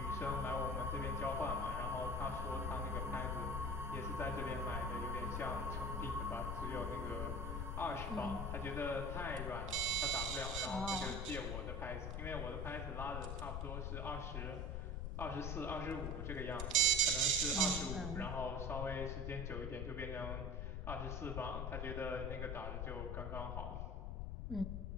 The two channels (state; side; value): noise; left; rumble, 2 dB below the sound